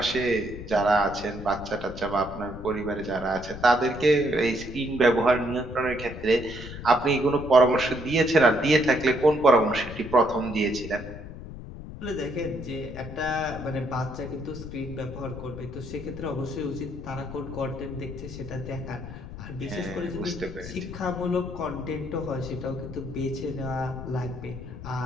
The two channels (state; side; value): noise; left; rumble, 11 dB below the sound